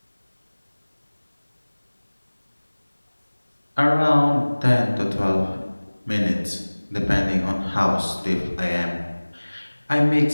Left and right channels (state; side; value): inverted; both; correlation -1.00